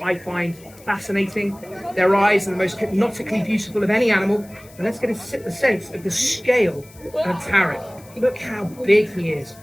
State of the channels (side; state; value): left; noise; hiss, 24 dB below the sound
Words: I find fascinating. Their eyes are the most hypnotically beautiful of any animal. And let's get a sense of the scale of Tarek. Look how big he is.